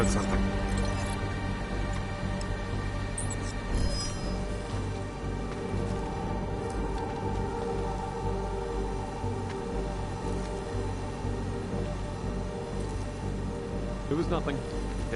something. It was nothing.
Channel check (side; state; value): both; identical; correlation 1.00